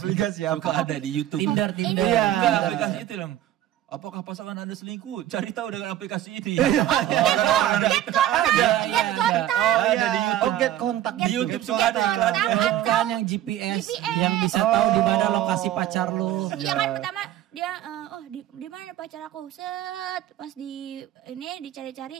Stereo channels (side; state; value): left; quieter; 12.7 dB